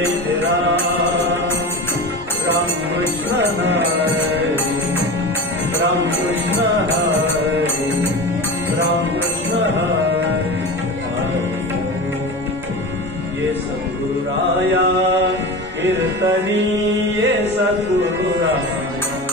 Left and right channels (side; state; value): both; normal; correlation 0.29